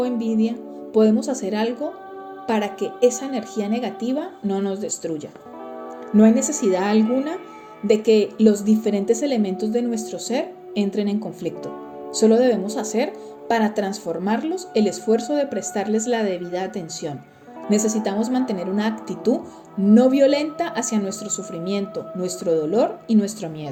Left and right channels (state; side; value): identical; both; correlation 1.00